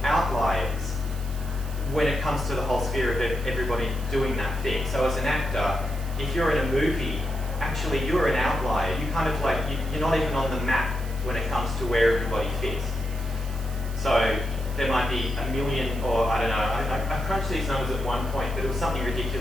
outliers when it comes to the whole sphere of everybody doing that thing. So as an actor, if you're in a movie, actually you're an outlier. You kind of like, you're not even on the map when it comes to where everybody fits. So there might be 1 million, or I don't know, I crunched these numbers at one point, but it was something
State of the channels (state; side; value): noise; right; hiss, 18 dB below the sound